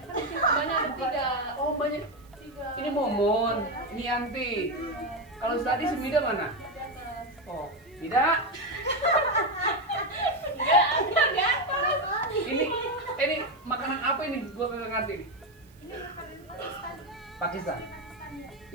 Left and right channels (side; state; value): right; noise; hiss, 30 dB below the sound